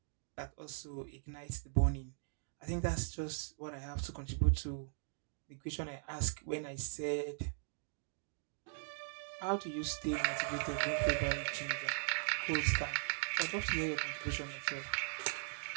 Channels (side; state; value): left; silent; digital silence